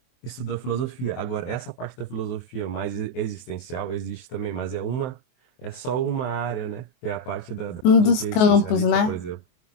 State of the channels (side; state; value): right; late; 23 ms